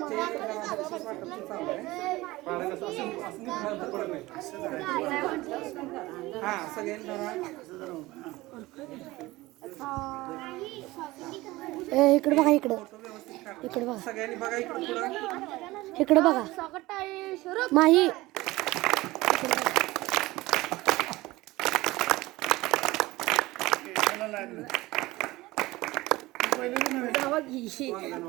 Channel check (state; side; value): quieter; left; 19.4 dB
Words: हा सगळ्यांनी धरा. इकडे बघा इकडं फोटो व्यवस्थित काढा. इकडे बघा सगळ्यांनी बघा इकडे पुढं. इकडे बघा माही जावा की.